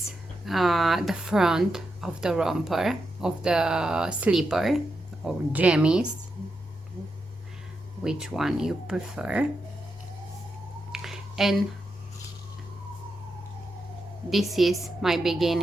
the front of the romper, of the slipper or jammies, which one you prefer. And this is my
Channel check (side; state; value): both; normal; correlation 0.85